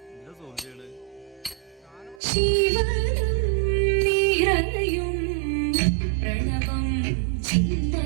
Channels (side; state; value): left; drops out; at 2.2 s